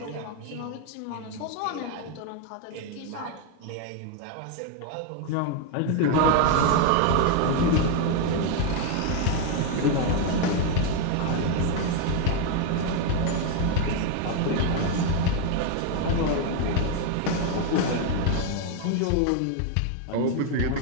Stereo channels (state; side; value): different; both; correlation 0.01